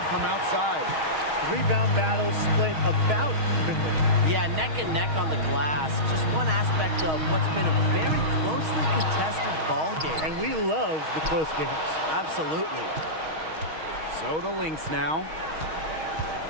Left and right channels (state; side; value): late; left; 6.4 ms